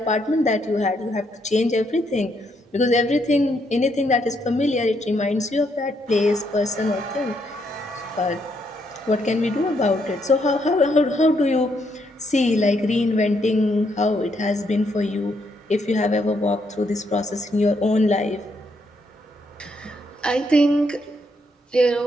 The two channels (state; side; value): normal; both; correlation 0.75